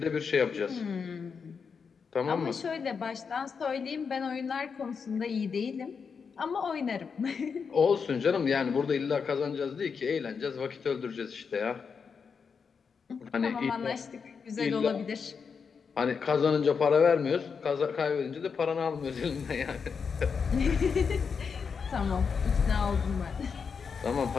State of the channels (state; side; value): quieter; right; 5.9 dB